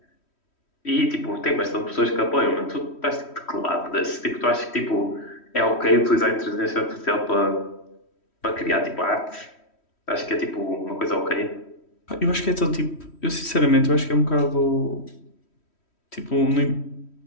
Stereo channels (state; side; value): late; right; 3.1 ms